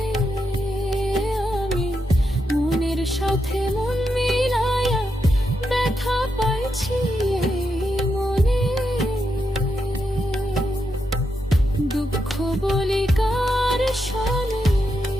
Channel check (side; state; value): both; normal; correlation 0.84